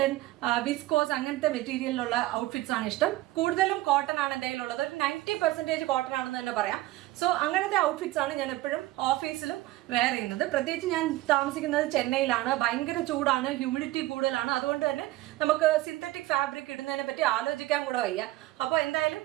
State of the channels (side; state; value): left; quieter; 17.3 dB